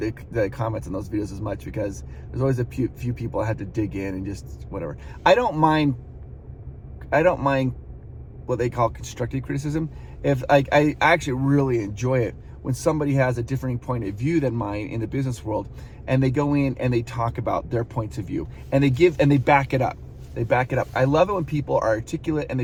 comments on those videos as much, because there's always a few people I have to dig in and just whatever. I don't mind what they call constructive criticism. If I actually really enjoy it when somebody has a different point of view than mine in the business world, and they go in and they talk about their points of view, and they back it up. They back it up. I love it when people are articulate and they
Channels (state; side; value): identical; both; correlation 1.00